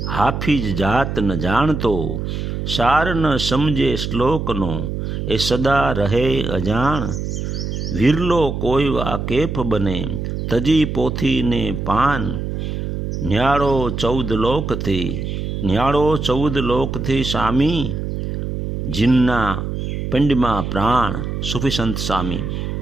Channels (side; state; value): right; noise; hum, 4 dB below the sound